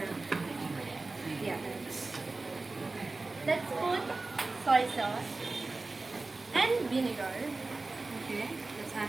Let's put soy sauce and vinegar. Okay, let's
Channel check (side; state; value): left; quieter; 3.5 dB